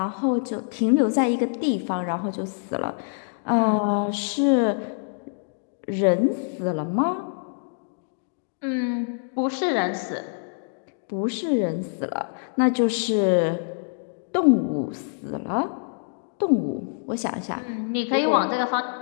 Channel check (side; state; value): right; silent; digital silence